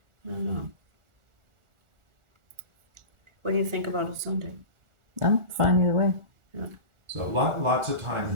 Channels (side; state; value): left; late; 1.4 ms